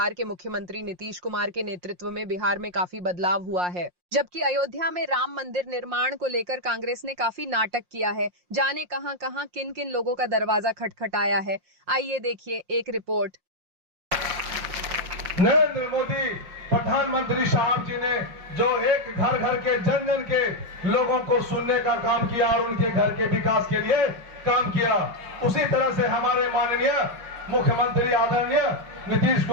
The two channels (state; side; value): late; left; 5.6 ms